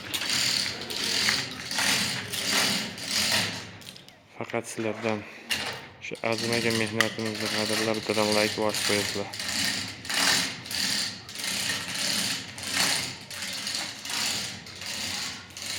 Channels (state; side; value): identical; both; correlation 1.00